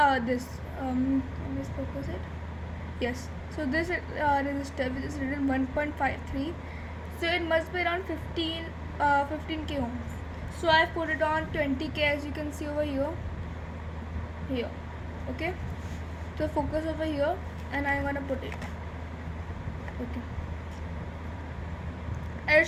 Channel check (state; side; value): identical; both; correlation 1.00